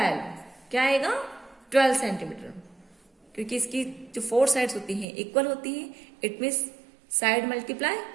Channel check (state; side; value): drops out; left; at 5.1 s